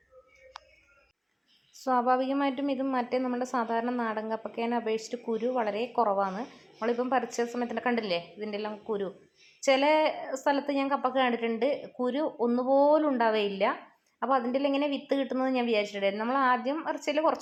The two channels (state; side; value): identical; both; correlation 1.00